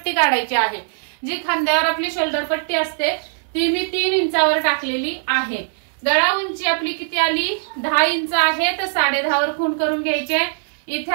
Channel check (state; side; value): silent; left; digital silence